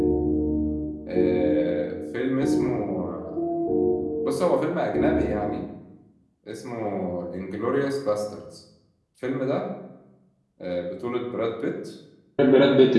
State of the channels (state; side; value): identical; both; correlation 1.00